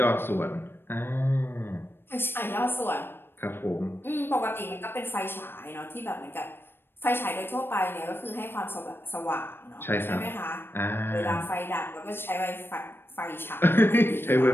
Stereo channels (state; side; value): late; right; 0.10 ms